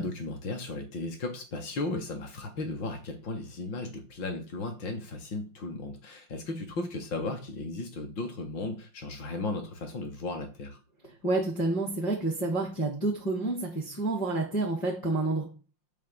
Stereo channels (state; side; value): late; right; 5.6 ms